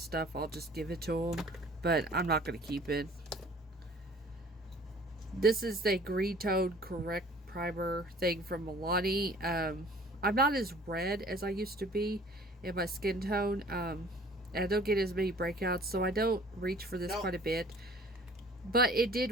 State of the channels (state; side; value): normal; both; correlation 0.51